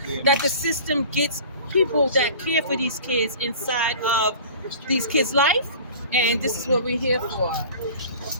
that the system gets people that care for these kids inside of these kids' life. And this is what we're here for.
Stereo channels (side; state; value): both; inverted; correlation -0.42